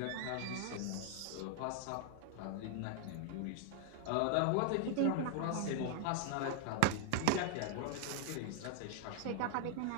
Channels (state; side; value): different; both; correlation 0.00